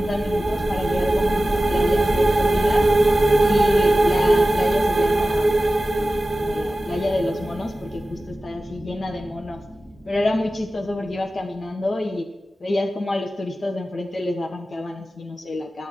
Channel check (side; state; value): both; normal; correlation 0.95